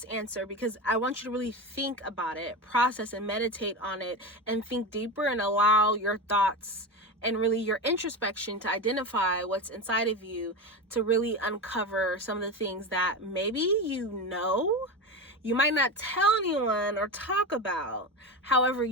answer, because I want you to really think about it, process and meditate on it, and think deeper, and allow your thoughts and really your introspection to identify what's inside of you, to really uncover some of the things that maybe you might not tell anyone or talk about. However,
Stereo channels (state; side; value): normal; both; correlation 0.22